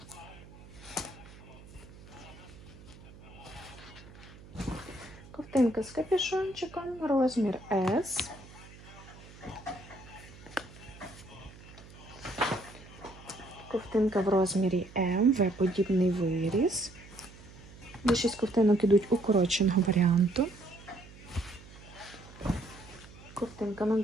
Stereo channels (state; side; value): noise; right; hum, 19 dB below the sound